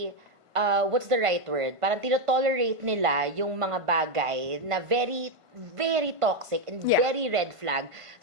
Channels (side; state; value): left; late; 1.5 ms